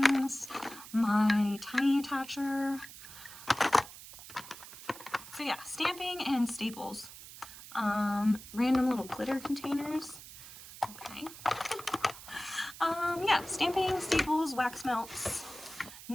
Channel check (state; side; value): noise; right; hiss, 15 dB below the sound